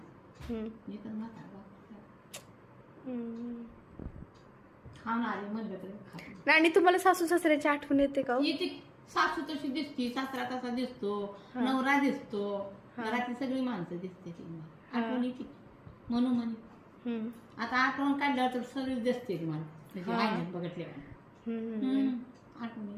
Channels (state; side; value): identical; both; correlation 1.00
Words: एकच म्हातारा खाऊन आले म्हणलं तरी खात आणि तुम्हाला सासू सासऱ्याची आठवण येते का हो? येते सासू तशी दिसते सासरा तसा दिसतो नवरा दिसतो घरातली सगळी माणसं दिसते ती आठवण येते म्हणून म्हणे आता आठवण काढल्यावर तर सगळीच दिसते ती मला त्याची आईने बघितल्यावर आठवण